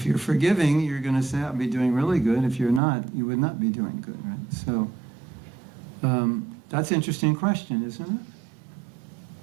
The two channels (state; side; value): drops out; left; at 2.8 s